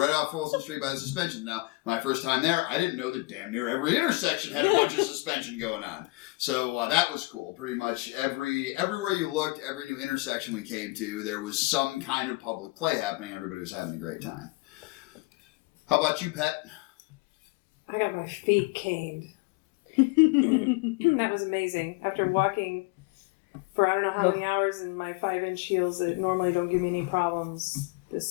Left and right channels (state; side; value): quieter; right; 24.1 dB